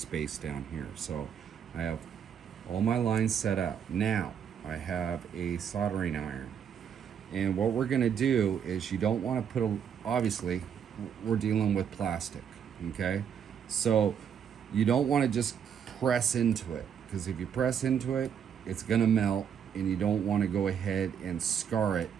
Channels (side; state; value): left; quieter; 8.0 dB